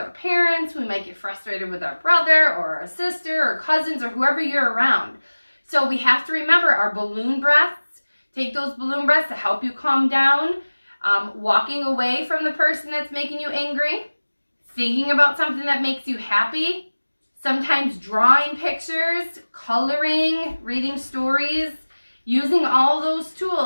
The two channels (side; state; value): both; inverted; correlation -1.00